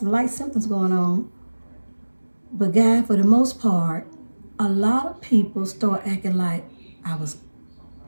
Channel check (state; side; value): inverted; both; correlation -1.00